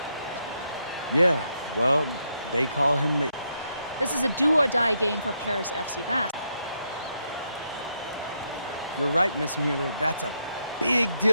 Yeah, well, they call him the... This is a do-or-die game for Paris FC Basque. You're right, Miss Mueller. That's a big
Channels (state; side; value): inverted; both; correlation -0.78